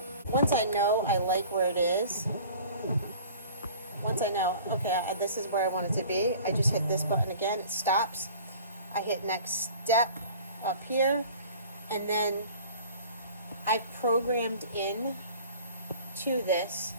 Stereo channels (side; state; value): both; inverted; correlation -0.45